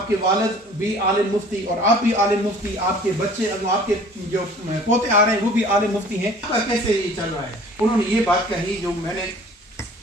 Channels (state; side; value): normal; both; correlation 0.49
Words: کے والد بھی عالم مفتی اور آپ بھی عالم مفتی، آپ کے بچے، آپ کے جو پوتے آ رہے ہیں وہ بھی عالم مفتی ہیں، کیسے یہ چل رہا ہے؟ انہوں نے یہ بات کہی جو میں نے